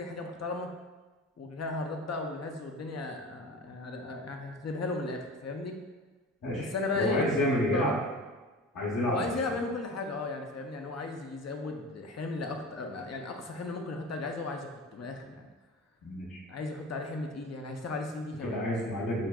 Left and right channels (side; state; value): both; normal; correlation 0.35